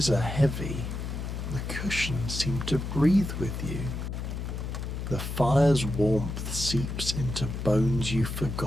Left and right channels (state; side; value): noise; left; hum, 5 dB below the sound